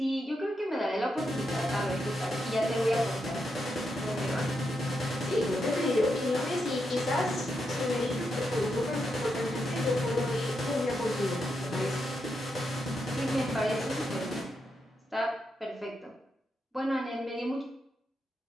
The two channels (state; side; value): normal; both; correlation 0.84